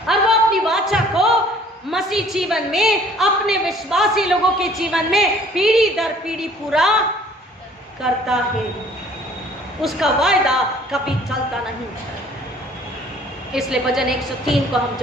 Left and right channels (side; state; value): both; normal; correlation 0.54